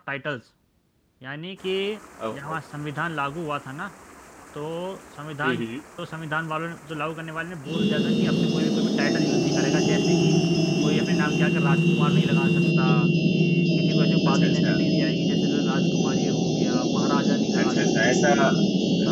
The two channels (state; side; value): identical; both; correlation 1.00